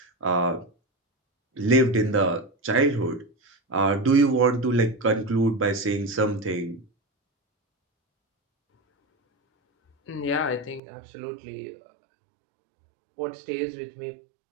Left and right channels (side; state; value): left; drops out; at 10.8 s